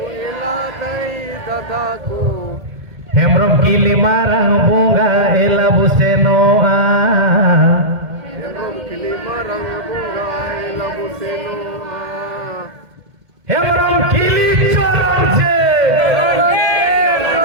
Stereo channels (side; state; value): left; late; 1.8 ms